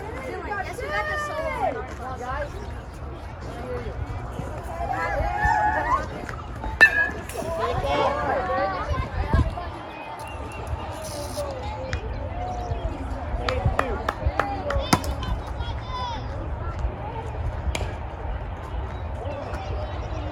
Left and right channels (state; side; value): identical; both; correlation 1.00